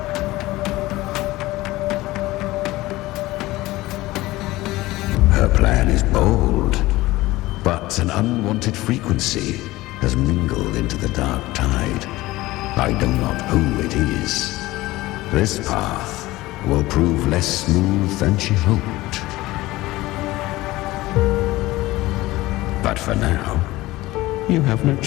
Her plan is bold, but an unwanted frequency has mingled into the dark tide. I know not who it is. This path will prove less smooth than she hoped. But for now, you have no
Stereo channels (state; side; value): quieter; right; 18.5 dB